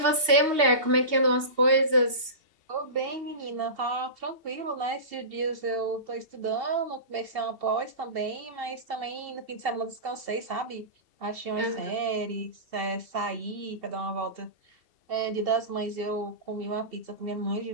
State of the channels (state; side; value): late; left; 2.7 ms